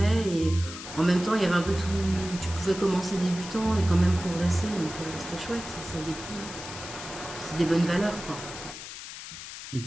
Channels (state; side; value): noise; left; hiss, 11 dB below the sound